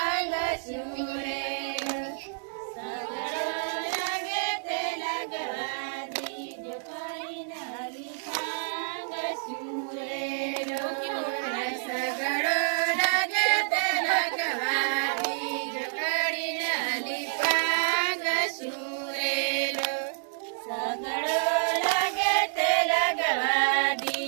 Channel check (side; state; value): left; silent; 59 dB below the other